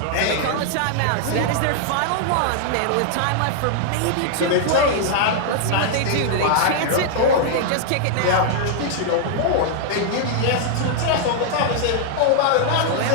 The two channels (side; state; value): both; different; correlation -0.01